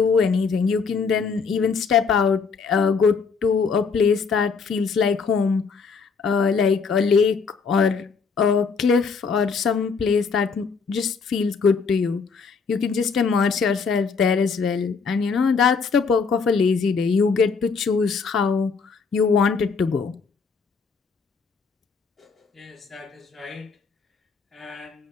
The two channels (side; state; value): right; quieter; 5.3 dB